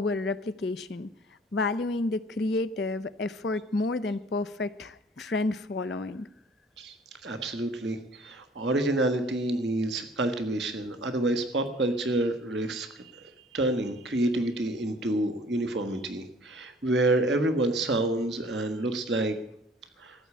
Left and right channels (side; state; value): both; normal; correlation 0.53